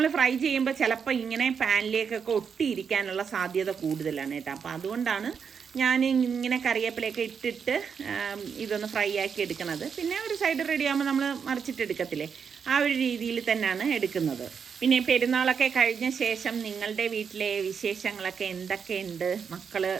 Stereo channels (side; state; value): left; quieter; 6.6 dB